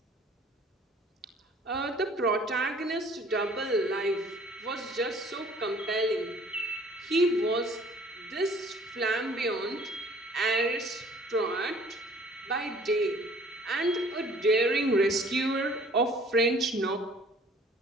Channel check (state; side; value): normal; both; correlation 0.54